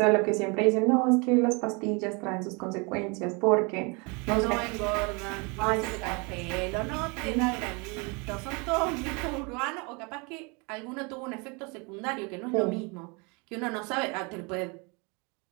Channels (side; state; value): left; quieter; 30.5 dB